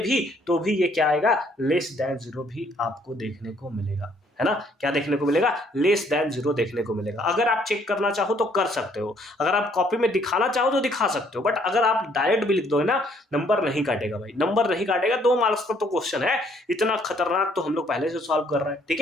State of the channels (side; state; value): both; normal; correlation 0.65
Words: तो भी ये क्या आएगा, लेस देन 0 भी आपको देखने को मिलेगा, है ना, क्या देखने को मिलेगा, लेस देन 0 देखने को मिलेगा। अगर आप चेक करना चाहो तो कर सकते हो, अगर आप कॉपी में दिखाना चाहो तो दिखा सकते हो, बट अगर आप डायरेक्ट भी लिख दोगे ना, नंबर नहीं काटेगा भाई, नंबर नहीं काटेगा। 2 मार्क्स का तो क्वेश्चन है, इतना खतरनाक तो हम लोग पहले से सॉल्व कर रहे हैं, ठीक